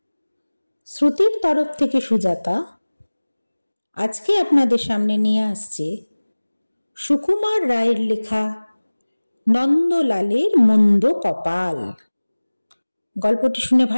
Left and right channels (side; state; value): both; inverted; correlation -1.00